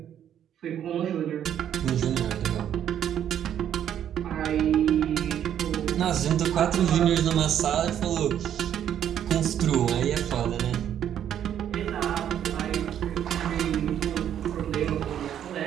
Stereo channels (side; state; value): left; quieter; 9.9 dB